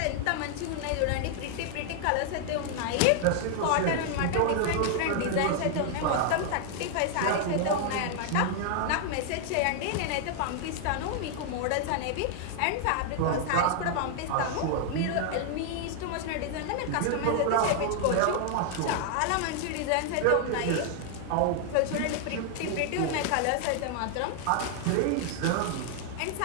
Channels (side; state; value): both; different; correlation 0.00